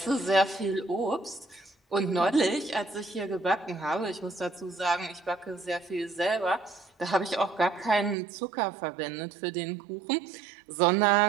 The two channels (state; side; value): drops out; left; at 8.2 s